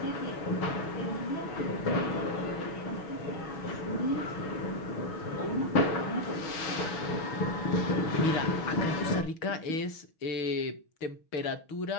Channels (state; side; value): late; right; 6.3 ms